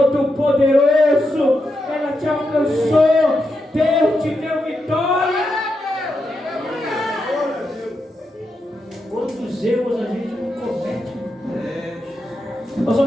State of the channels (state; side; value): normal; both; correlation 0.85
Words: ela te alcançou. Deus te deu vitória. Quantos erros a gente não comete? Nós